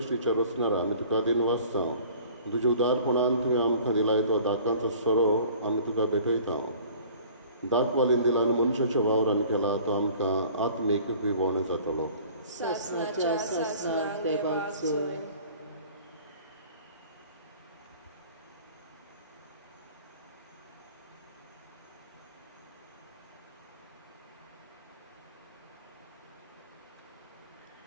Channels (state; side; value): inverted; both; correlation -0.49